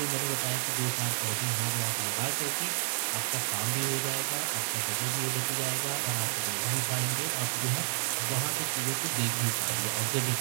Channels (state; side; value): silent; left; 58 dB below the other